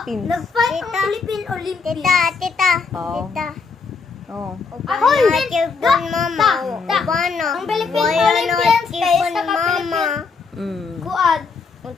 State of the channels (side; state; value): right; quieter; 4.8 dB